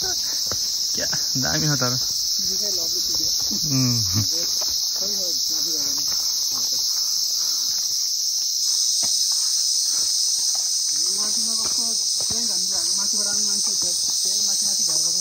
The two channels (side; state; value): both; identical; correlation 1.00